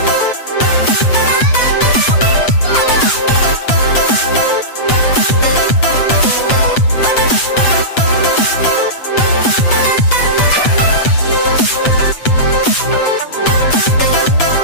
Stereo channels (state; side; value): late; right; 8.0 ms